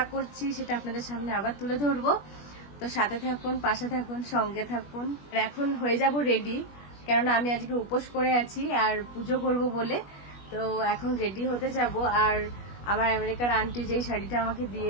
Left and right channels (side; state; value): right; late; 21 ms